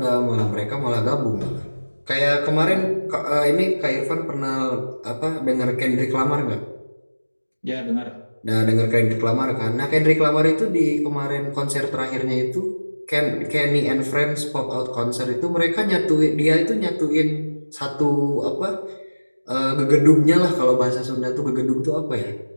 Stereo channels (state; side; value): inverted; both; correlation -1.00